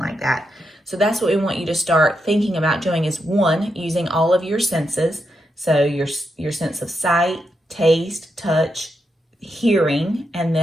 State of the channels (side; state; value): both; normal; correlation 0.84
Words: that. So that's what we want you to start thinking about doing is 1, using all of your senses. So your sense of sight, taste, touch, hearing, and